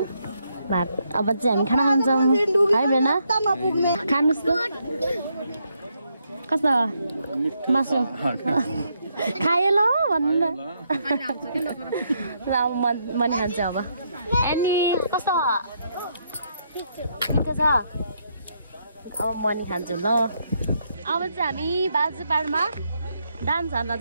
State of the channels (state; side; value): inverted; both; correlation -0.77